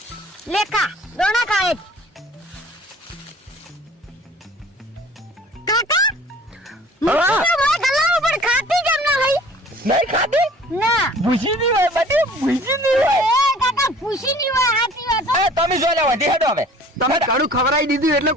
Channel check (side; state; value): both; normal; correlation 0.50